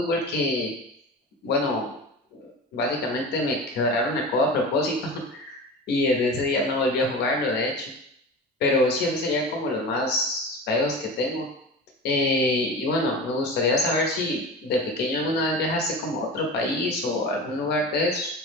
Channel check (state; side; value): normal; both; correlation 0.31